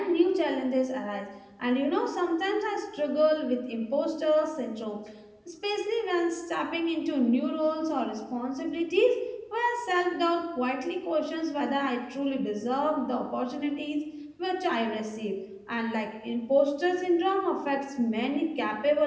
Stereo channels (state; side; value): identical; both; correlation 1.00